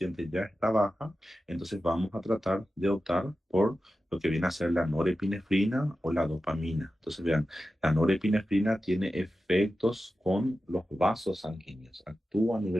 ya está baja, entonces vamos a tratar de optar por lo que viene a ser la norepinefrina o la dopamina. Entonces vean, la norepinefrina tiene efectos con los vasos sanguíneos. Actúa a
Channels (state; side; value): normal; both; correlation 0.93